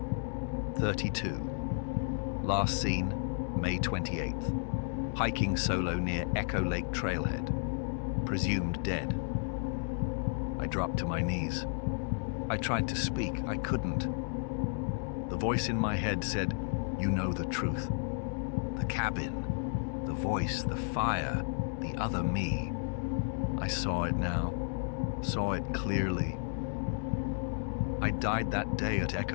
32. Last seen, May 28th. Hiking solo near Echo Lake Trailhead. Presumed dead. I dropped to my knees. I tried to speak. I couldn't. The voice in my head said, "You know the truth. The cabin, the voice, the fire, the other me." I saw it now. Saw it clearly. I died that day at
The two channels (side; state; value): right; silent; 56 dB below the other